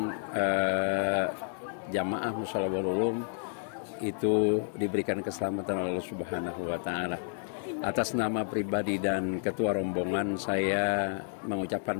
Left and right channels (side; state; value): right; silent; digital silence